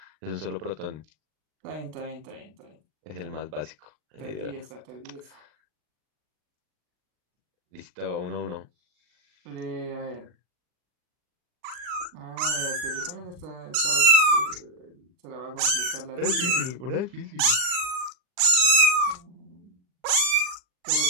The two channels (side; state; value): left; late; 39 ms